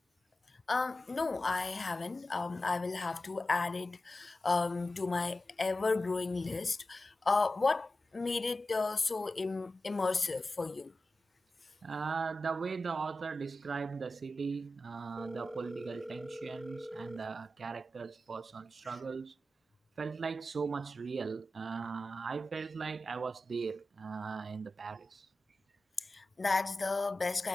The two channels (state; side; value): normal; both; correlation 0.93